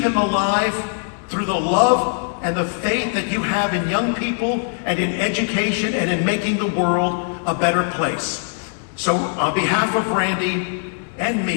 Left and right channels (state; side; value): silent; right; 65 dB below the other